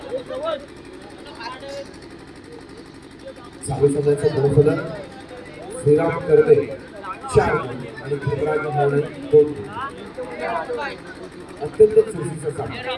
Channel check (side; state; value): both; identical; correlation 1.00